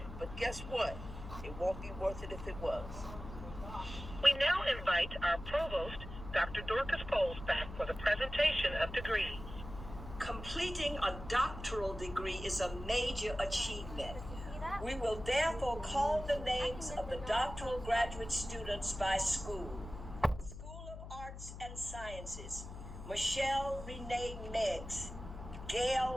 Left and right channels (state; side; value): noise; left; hum, 11 dB below the sound